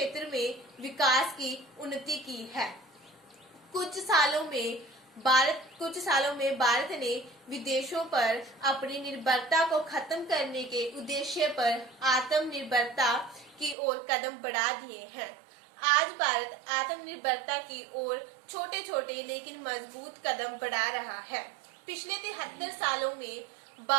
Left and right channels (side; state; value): left; drops out; at 13.8 s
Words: में विकास की उन्नति की है। कुछ सालों में भारत ने विदेशों पर अपनी निर्भरता को खत्म करने के उद्देश्य पर आत्मनिर्भरता की ओर कदम बढ़ा दिए हैं। आज भारत आत्मनिर्भरता की ओर छोटे छोटे लेकिन मजबूत कदम बढ़ा रहा है। पिछले 73 सालों में